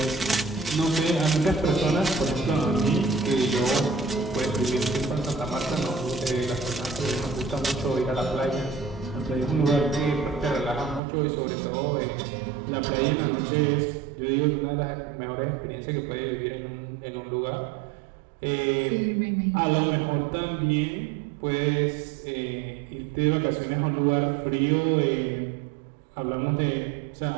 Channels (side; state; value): left; drops out; at 11.0 s